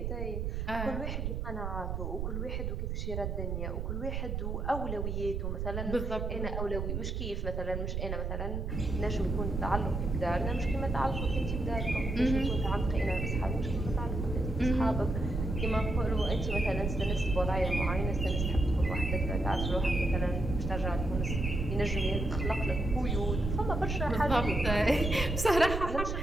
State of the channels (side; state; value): right; noise; rumble, 2 dB below the sound